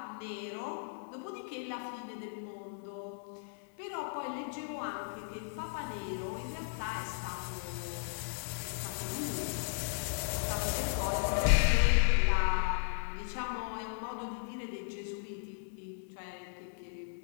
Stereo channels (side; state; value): right; silent; digital silence